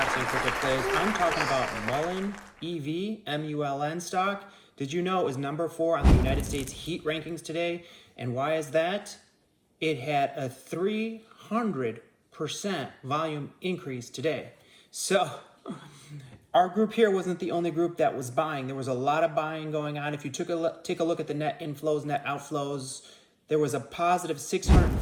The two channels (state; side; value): identical; both; correlation 1.00